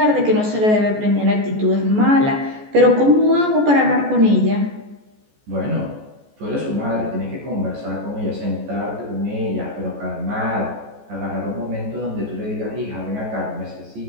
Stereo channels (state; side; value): late; left; 14 ms